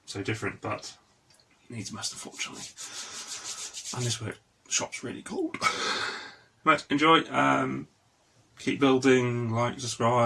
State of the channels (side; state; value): both; identical; correlation 1.00